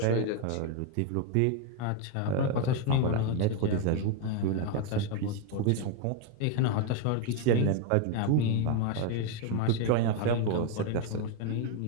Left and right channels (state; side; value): different; both; correlation 0.01